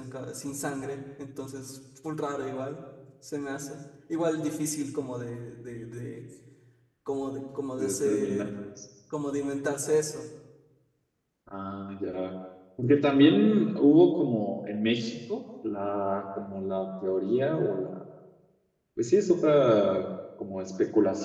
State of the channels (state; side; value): identical; both; correlation 1.00